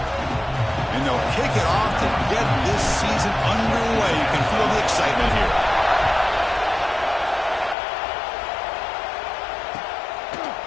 Kick it off to get this season underway. You can feel the excitement here.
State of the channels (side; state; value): right; drops out; at 7.8 s